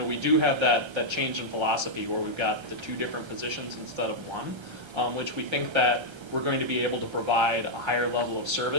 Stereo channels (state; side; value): late; left; 1.3 ms